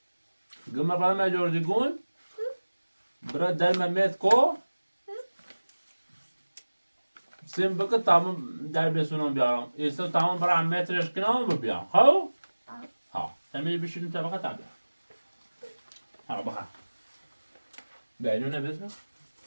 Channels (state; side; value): inverted; both; correlation -1.00